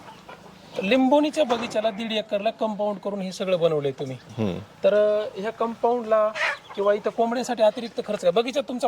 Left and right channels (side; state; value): both; identical; correlation 1.00